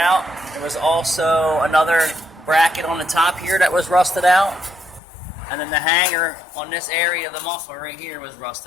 There was also another bracket on the top here that was rusted out. And then the hanger on this area of the muffler right here was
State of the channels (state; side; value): drops out; right; at 5.0 s